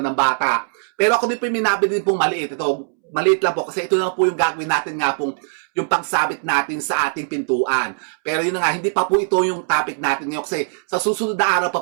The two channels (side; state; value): left; silent; 65 dB below the other